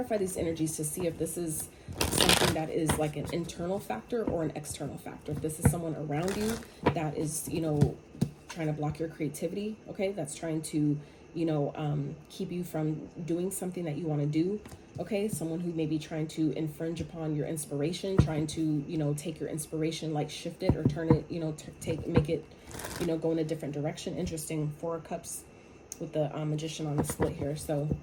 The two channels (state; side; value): identical; both; correlation 1.00